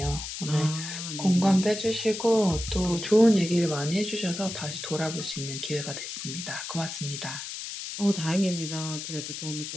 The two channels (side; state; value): left; noise; hiss, 7 dB below the sound